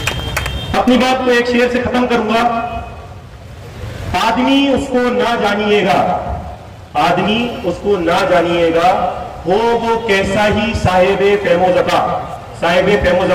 अपनी बात को एक शेर से खत्म करूंगा। आदमी उसको ना जानिएगा, आदमी उसको ना जानिएगा, हो वो कैसा ही साहिबे फेमोजका, साहिबे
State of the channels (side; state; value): both; identical; correlation 1.00